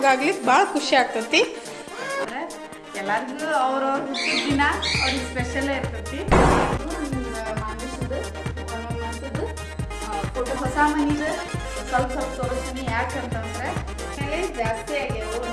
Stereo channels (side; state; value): both; identical; correlation 1.00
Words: ಭಾಳ ಖುಷಿ ಆಗ್ತೈತಿ. ಅಂದ್ರೆ ಎಲ್ಲರಿಗೂ ಅವ್ರವ್ರ ದಿನ ಅವ್ರಿಗೆ ಸ್ಪೆಷಲ್ ಇರ್ತೈತಿ. ಮಾನುಷದ್ದು ಒಂದೊಂದು ಮಂತದ್ದು ಫೋಟೋ ಹೊಸ ಮನಿದು ಸ್ವಲ್ಪ ಸ್ವಲ್ಪ ತೋರಿಸ್ತೀನಿ. ಯಾಕಂತಂದ್ರೆ ಮೇಲೆ ಜಾಸ್ತಿ ಆಗ್ಯಾವು.